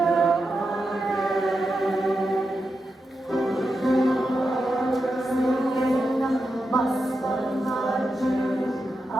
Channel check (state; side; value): normal; both; correlation 0.88